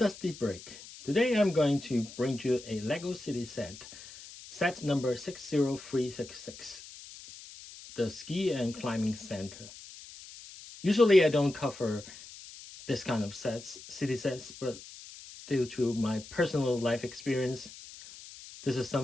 Break. Today I'm going to bring you a LEGO City set number 60366, the Ski and Climbing Center. Usually I don't cover this kind of city sets, but due to my personal life experience, this is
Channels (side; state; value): left; noise; hiss, 16 dB below the sound